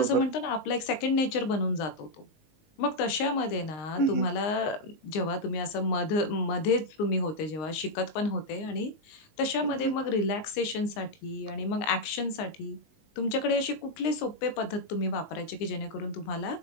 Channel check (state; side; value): late; right; 19 ms